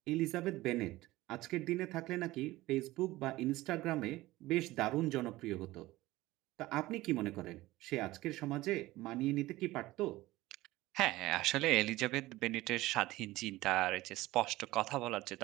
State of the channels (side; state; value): left; quieter; 18.1 dB